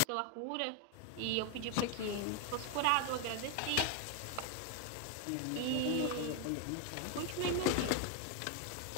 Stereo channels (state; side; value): different; both; correlation 0.01